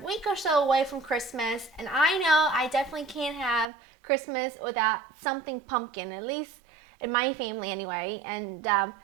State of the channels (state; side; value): drops out; left; at 3.7 s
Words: week or so away from Christmas, and I know I definitely can't have Christmas without something pumpkin, at least in my family anyway. And